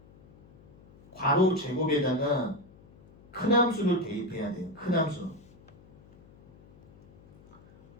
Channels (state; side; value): noise; left; hum, 25 dB below the sound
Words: 괄호 제곱에다가 큰 함수를 대입해야 돼요. 큰 함수.